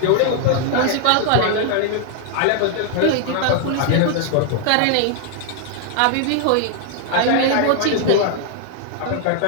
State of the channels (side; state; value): both; different; correlation 0.00